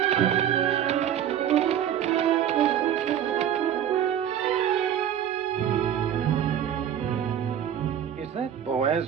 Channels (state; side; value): quieter; left; 9.9 dB